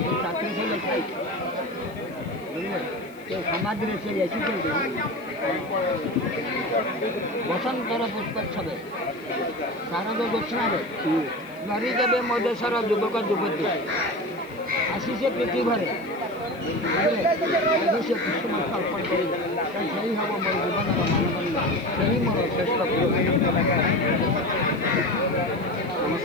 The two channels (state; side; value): noise; left; hiss, 27 dB below the sound